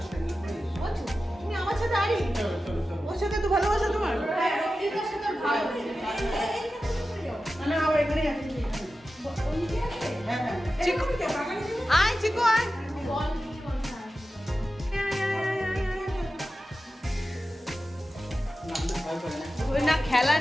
ও, তুমি আমার সাথে আরি, চলো, চলো, চলো। ওর সাথে তো ভালোবাসা তোমার। হ্যাঁ, রক্তিমের সাথে ভালো। না, না, ও এখানেই আছে, এখানে। ওইদিকে আছে? হ্যাঁ, হ্যাঁ। চিকু আয়, চিকু আয়। বল নিয়ে বসা। না, না, ভয় করে না। ওই না খেলা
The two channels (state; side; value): normal; both; correlation 0.93